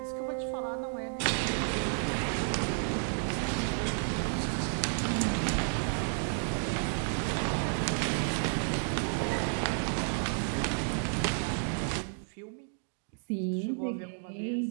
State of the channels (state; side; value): silent; left; 57 dB below the other